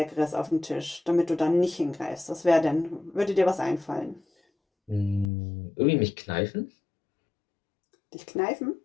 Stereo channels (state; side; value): drops out; right; at 5.3 s